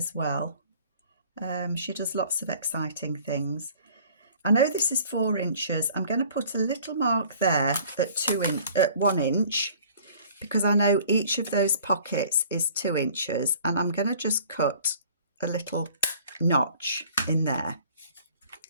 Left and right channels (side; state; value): both; inverted; correlation -0.52